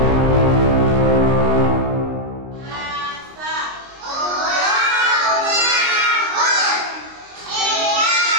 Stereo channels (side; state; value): left; late; 23 ms